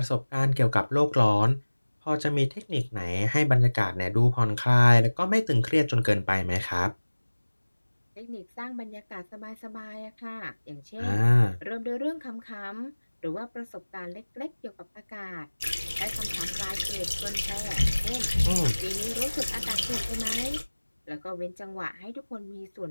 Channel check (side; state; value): both; inverted; correlation -1.00